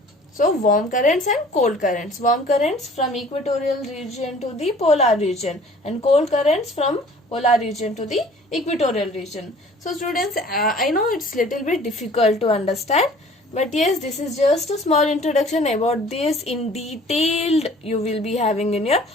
So warm currents and cold currents. Warm currents from equatorial region to the polar region, and cold currents from polar region to the equatorial region. So students, I know it's little bit difficult to understand, but yes, this is just a small introduction. About this in detailed you will be having in your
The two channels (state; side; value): normal; both; correlation 0.50